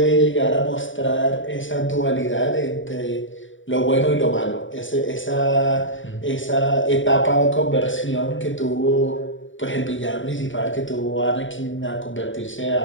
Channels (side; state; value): right; late; 0.56 ms